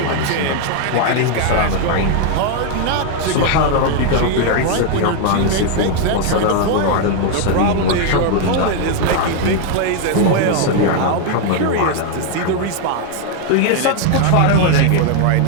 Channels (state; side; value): different; both; correlation 0.00